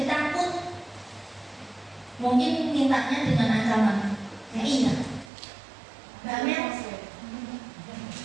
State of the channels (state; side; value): drops out; left; at 5.3 s